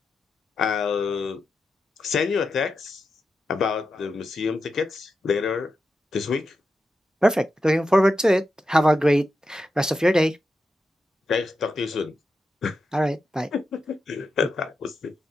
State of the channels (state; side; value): normal; both; correlation 0.88